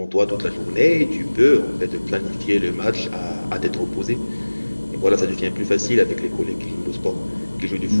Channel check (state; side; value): inverted; both; correlation -1.00